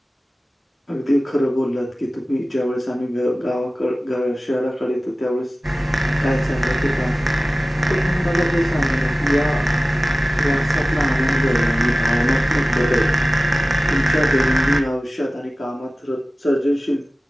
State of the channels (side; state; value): both; normal; correlation 0.96